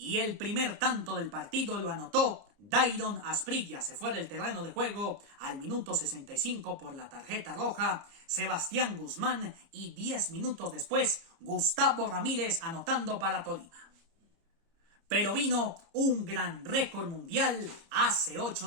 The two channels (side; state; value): left; late; 30 ms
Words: el primer tanto del partido lo anotó Dairon Asprilla. Se fue del terreno de juego al minuto 65 por la tarjeta roja Sebastián Guzmán y 10 minutos después Gustavo Ramírez anotando para Tolima. Pero vino un gran récord mundial hace 8